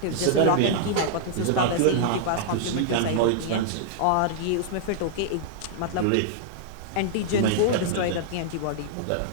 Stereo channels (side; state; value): both; different; correlation -0.01